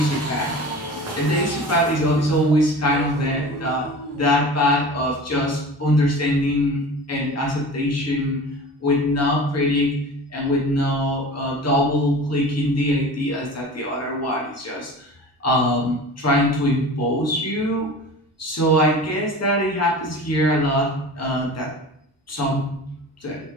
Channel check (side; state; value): both; normal; correlation 0.37